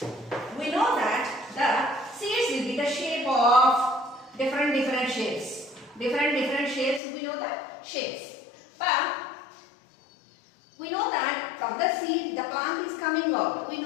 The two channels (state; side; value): drops out; right; at 7.0 s